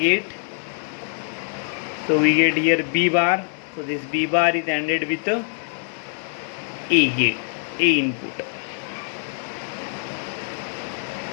so we get here B bar, so this B bar is ANDed with a gate, A input.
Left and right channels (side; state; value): right; silent; 62 dB below the other